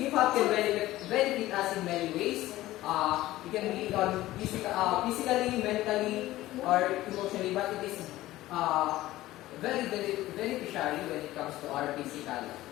can benefit us in many ways. It can be on physically, mentally, or emotionally, but it is very beneficiary when it comes to our physical.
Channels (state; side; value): quieter; right; 16.2 dB